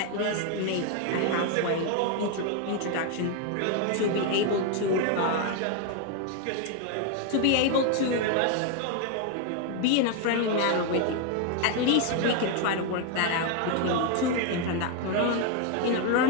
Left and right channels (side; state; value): both; different; correlation 0.01